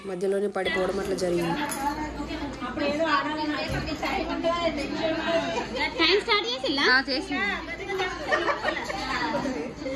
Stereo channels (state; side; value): identical; both; correlation 1.00